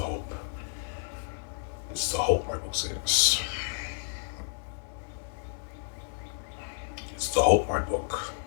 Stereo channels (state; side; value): silent; right; digital silence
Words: hope. It's the hope, my book says. It's the hope, my book.